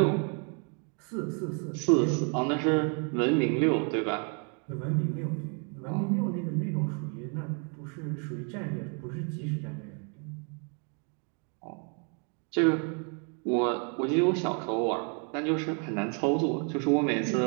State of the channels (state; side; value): quieter; left; 38.7 dB